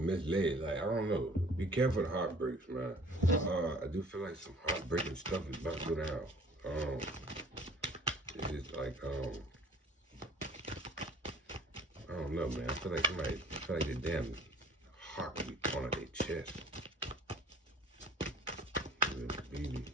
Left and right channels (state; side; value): normal; both; correlation 0.50